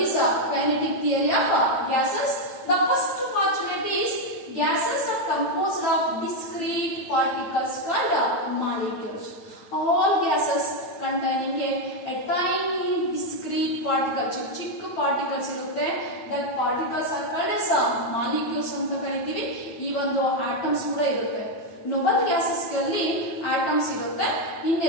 kinetic theory of gases. The first postulate is gases are composed of discrete particles called molecules. All gases containing a tiny discrete particle, ಚಿಕ್ಕ particles ಇರುತ್ತೆ. That particles are called as molecules ಅಂತ ಕರಿತೀವಿ. ಈ ಒಂದು atoms ಕೂಡ ಇರುತ್ತೆ. Nobel gases ಗಳಲ್ಲಿ atoms ಇರುತ್ತೆ,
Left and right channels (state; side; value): late; right; 9.0 ms